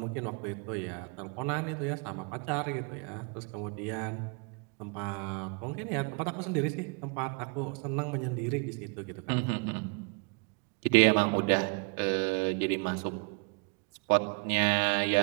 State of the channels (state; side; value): quieter; left; 34.5 dB